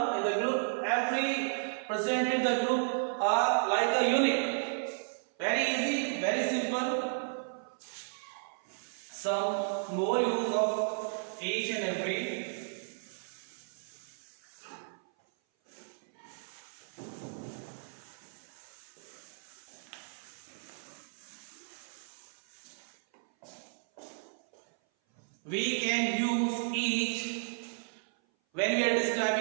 In the group, every present in the group are like a unit. Very easy, very simple. Some more use of each and every. We can use each when we are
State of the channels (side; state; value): left; silent; 55 dB below the other